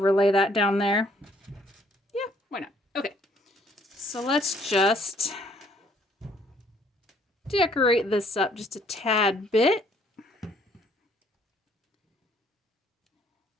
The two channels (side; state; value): both; normal; correlation 0.64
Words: that down there. Yeah, why not? Okay, so let's just decorate this up just a tad bit.